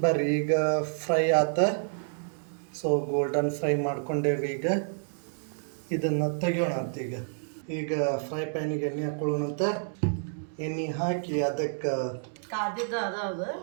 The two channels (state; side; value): silent; left; 59 dB below the other